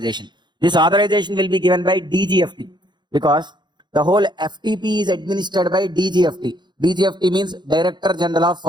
This authorization will be given by DGFT because the whole FTP is administered by DGFT. DGFT means Director General of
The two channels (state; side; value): late; left; 0.21 ms